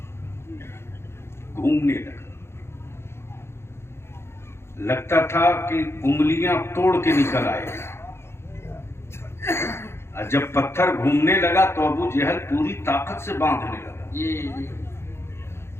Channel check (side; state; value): right; late; 0.12 ms